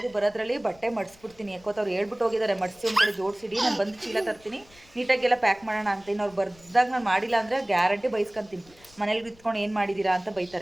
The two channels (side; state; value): left; noise; rumble, 26 dB below the sound